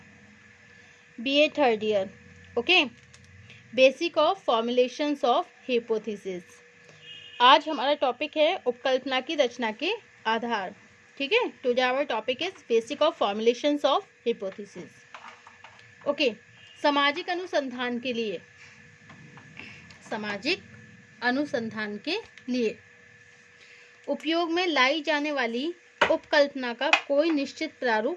BA third year. Okay, basic of formulations of hypothesis. आज हमारा topic है उपकल्पना की रचना के आधार। ठीक है, today our topic is basic of formulations of hypothesis. Okay, सामाजिक अनुसंधान के लिए उपयोग में लाई जाने वाली उपकल्पना का कोई निश्चित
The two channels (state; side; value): identical; both; correlation 1.00